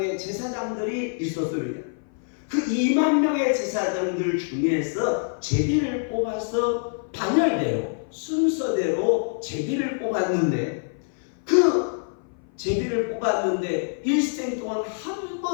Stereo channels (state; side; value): silent; right; 57 dB below the other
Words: 제사장들이 있었습니다. 그 2만 명의 제사장들 중에서 제비를 뽑아서 반열대로 순서대로 제비를 뽑았는데, 그 제비를 뽑았는데 일생 동안 한